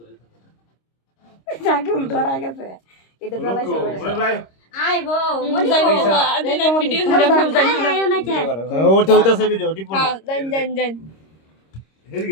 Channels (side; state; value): right; late; 26 ms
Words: জাগুল ধরা গেছে এটা জ্বালাইছে আইবো মনি ভিডিও করে আমি জানি না ওর তো হইতাছে ভিডিও টিপ না জান